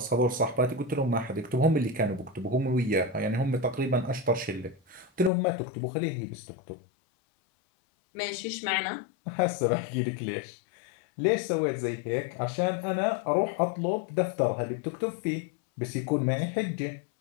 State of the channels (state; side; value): drops out; right; at 5.3 s